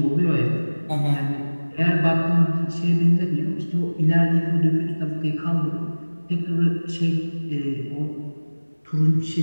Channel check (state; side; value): inverted; both; correlation -1.00